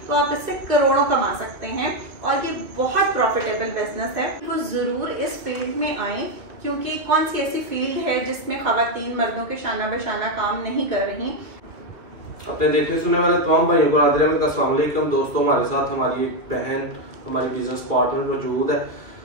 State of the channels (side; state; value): left; late; 2.3 ms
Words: तो आप इससे करोड़ों कमा सकते हैं और ये बहुत प्रॉफिटेबल बिजनेस है। वो जरूर इस फील्ड में आए, क्योंकि कौन सी ऐसी फील्ड है जिसमें खवातीन मर्दों के शाना बशाना काम नहीं कर रही। अपने देखने सुनने वाले तमाम भाइयों को नादिर अहमद का अस्सलाम वालेकुम। दोस्तों, हमारे साथ हमारी एक बहन, हमारी बिजनेस पार्टनर मौजूद है।